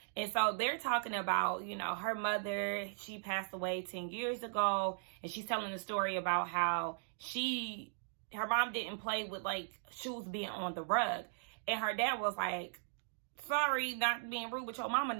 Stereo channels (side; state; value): left; silent; digital silence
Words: And so they're talking about, her mother, she passed away 10 years ago, and she's telling the story about how her mom didn't play with shoes being on the rug. And her dad was like, sorry, not being rude, but your mama